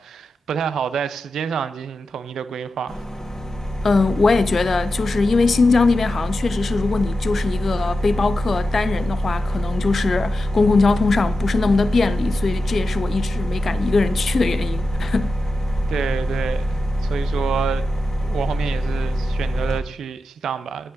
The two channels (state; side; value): normal; both; correlation 0.91